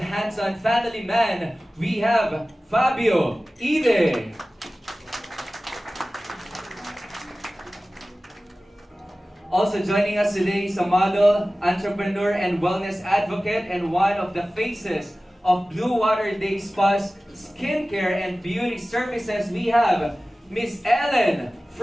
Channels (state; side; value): normal; both; correlation 0.97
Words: family man. We have Fabio Ide. Also joining us today is a model, entrepreneur, and wellness advocate, and one of the faces of Blue Water Day Spa's skincare and beauty services. We have Miss Ellen